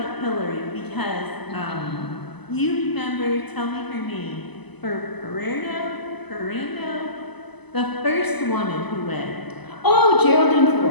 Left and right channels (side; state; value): right; late; 0.99 ms